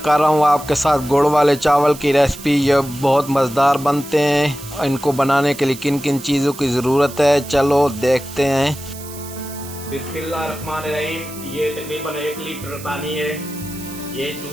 कर रहा हूँ आपके साथ गुड़ वाले चावल की रेसिपी। ये बहुत मज़ेदार बनते हैं। इनको बनाने के लिए किन किन चीज़ों की ज़रूरत है, चलो देखते हैं। बिस्मिल्लाहिर्रहमानिर्रहीम। ये तकरीबन 1 लीटर पानी है। ये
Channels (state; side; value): noise; right; hiss, 15 dB below the sound